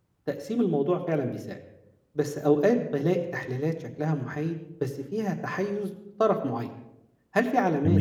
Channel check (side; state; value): both; identical; correlation 1.00